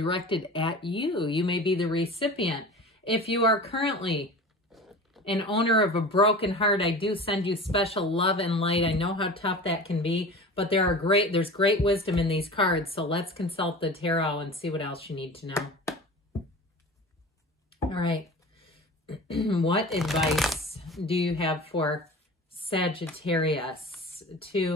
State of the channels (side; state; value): both; normal; correlation 0.36